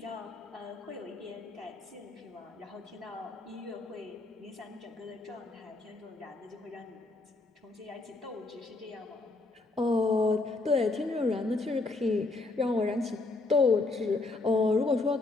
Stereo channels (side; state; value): right; quieter; 3.4 dB